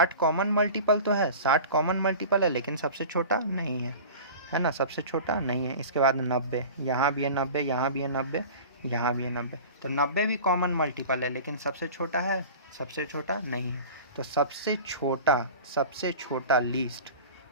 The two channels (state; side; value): inverted; both; correlation -0.38